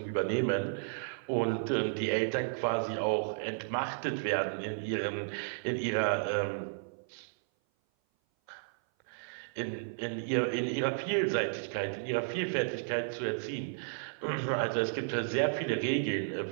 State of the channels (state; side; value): silent; left; 56 dB below the other